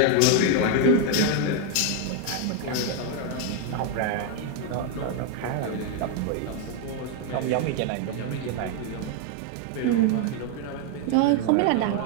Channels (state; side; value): different; both; correlation 0.01